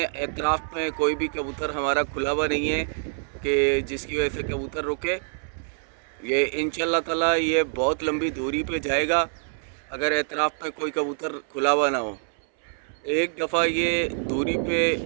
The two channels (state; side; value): silent; left; 57 dB below the other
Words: एतराफ़ में कोई भी कबूतर हमारा खुला हुआ नहीं है कि जिसकी वजह से कबूतर रुके। ये इंशाल्लाह ताला ये बहुत लंबी दूरी पे जाएगा अगर एतराफ़ में कोई कबूतर खुला हुआ ना हो। एक दफ़ा ये दूरी पे